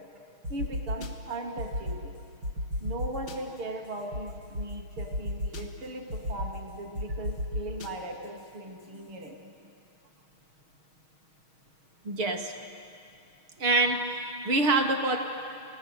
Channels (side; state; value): left; late; 6.4 ms